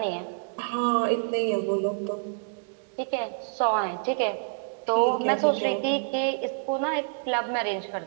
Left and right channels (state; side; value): silent; left; digital silence